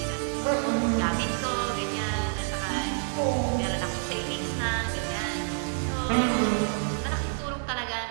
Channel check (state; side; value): silent; left; digital silence